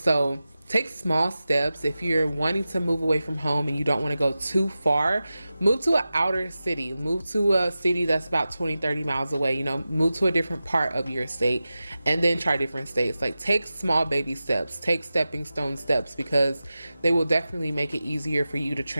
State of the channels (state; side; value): inverted; both; correlation -0.94